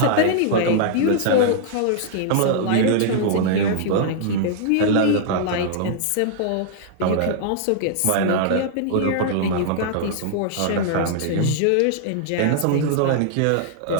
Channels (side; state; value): both; different; correlation -0.01